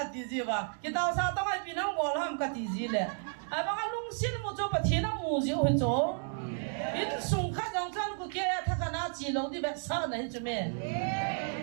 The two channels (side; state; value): left; silent; 56 dB below the other